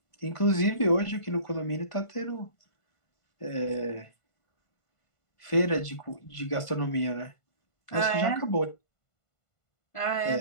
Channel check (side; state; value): right; late; 1.5 ms